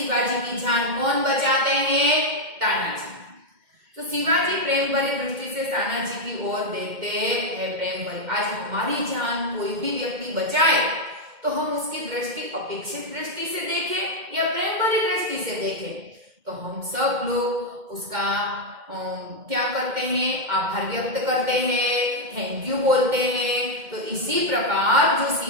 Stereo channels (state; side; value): late; left; 2.1 ms